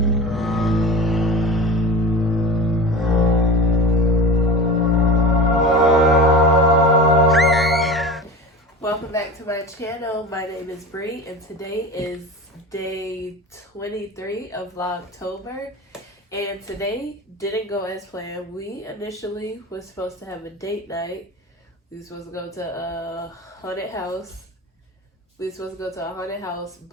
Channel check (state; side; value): normal; both; correlation 0.32